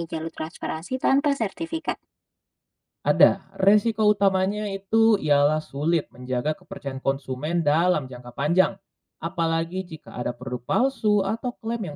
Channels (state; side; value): identical; both; correlation 1.00